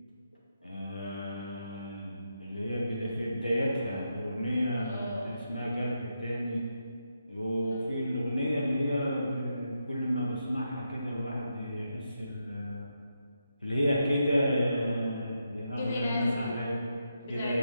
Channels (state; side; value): inverted; both; correlation -0.84